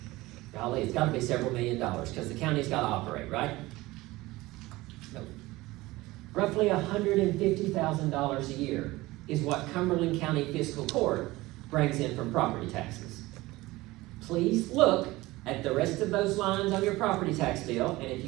Golly, it's got to be several $1 million because the county's got to operate, right? Nope. Roughly $150,000 a year is what Cumberland County Fiscal Court brings in from property taxes. Please look at the rest of those lines on your property tax bill, and if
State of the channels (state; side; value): quieter; left; 19.6 dB